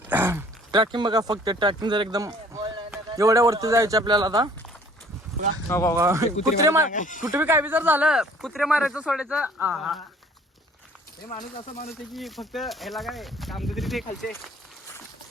ट्रॅकिंग बघा, फक्त ट्रॅकिंग जर एकदम एवढ्या वरती जायचं आपल्याला. आता कुत्रे कुठे बी काय बी जर झालं, कुत्रे मारायचं सोडायचं. हे माणूस असा माणूस आहे की फक्त ह्याला काय काम तरी ते खायचे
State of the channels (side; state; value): both; normal; correlation 0.55